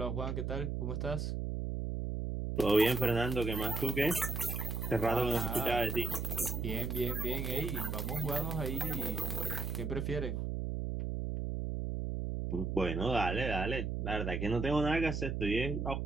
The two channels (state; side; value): noise; right; hum, 2 dB below the sound